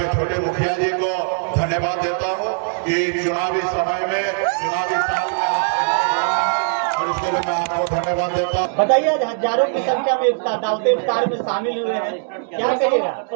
छोटे मुखिया जी को धन्यवाद देता हूँ कि चुनावी समय में, चुनावी साल में और इसके लिए मैं आपको धन्यवाद देता हूँ। बताइए, आज हजारों की संख्या में दावत इफ्तार में शामिल हुए हैं, क्या कहिएगा?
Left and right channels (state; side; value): silent; left; digital silence